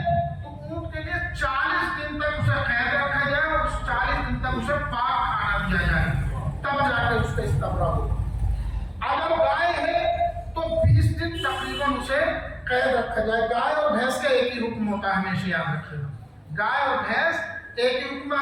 تو اونٹ کے لیے 40 دن تک اسے قید رکھا جائے اور 40 دن تک اسے پاک کھانا دیا جائے، تب جا کے اس کا استبراء ہو۔ اگر گائے ہے تو 20 دن تقریباً اسے قید رکھا جائے۔ گائے اور بھینس کا ایک ہی حکم ہوتا ہے، ہمیشہ یاد رکھیے گا، گائے اور بھینس ایک ہی حکم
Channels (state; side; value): identical; both; correlation 1.00